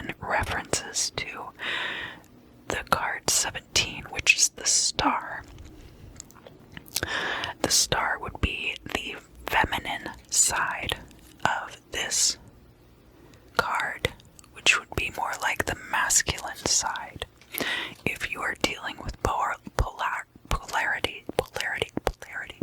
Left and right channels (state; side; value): identical; both; correlation 1.00